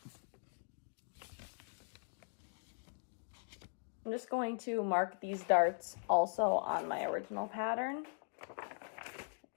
I'm just going to mark these darts also on my original pattern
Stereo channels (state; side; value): silent; right; digital silence